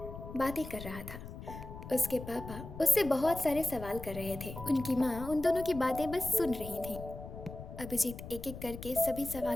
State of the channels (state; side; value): noise; left; rumble, 11 dB below the sound